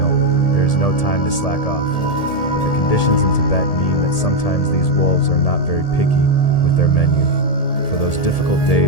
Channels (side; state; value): right; late; 1.8 ms